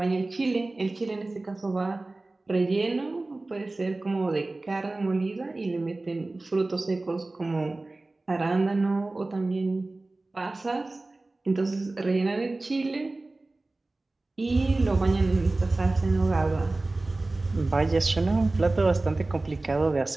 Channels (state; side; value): quieter; left; 3.0 dB